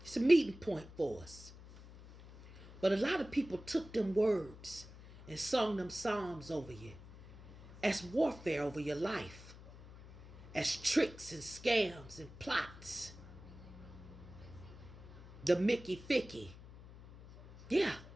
It's a meeting point for us. But a lot of people took them words and sung them psalms over you as warfare over your life, as tricks and scams and plots. The Mickey Ficky. Yeah,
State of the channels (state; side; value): noise; left; hum, 17 dB below the sound